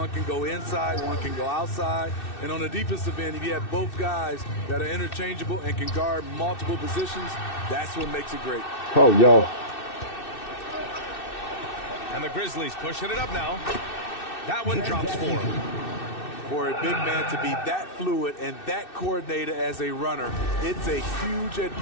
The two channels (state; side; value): late; right; 2.6 ms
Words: can go inside, one can go outside. And on the defensive end, if you have both guys that are interchangeable and can guard multiple positions, that's what makes it great. Oh, yo. And the Grizzlies pushing it up now. That one drops for him. For a big man to be that fluid and that coordinated as a runner, it's a huge